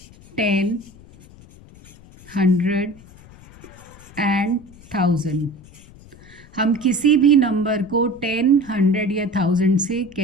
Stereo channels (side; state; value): left; noise; rumble, 22 dB below the sound